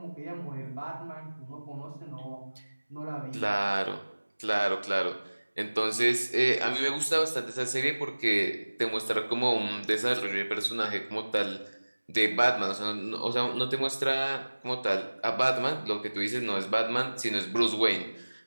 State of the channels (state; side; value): inverted; both; correlation -1.00